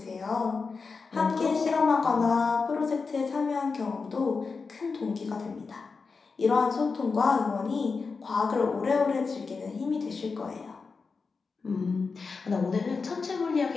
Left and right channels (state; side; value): quieter; right; 4.7 dB